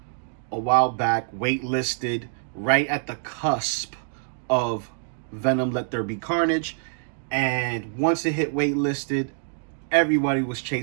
a while back, waitlisted, right at the cusp of Venom Let There Be Carnage. And once it hit waitlisted, everybody was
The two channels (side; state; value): left; silent; 61 dB below the other